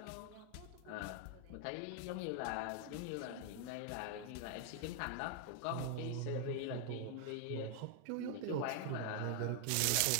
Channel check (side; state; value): both; different; correlation 0.00